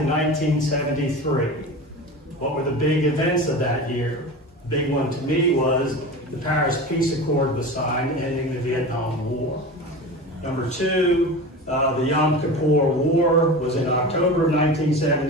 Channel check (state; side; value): normal; both; correlation 0.30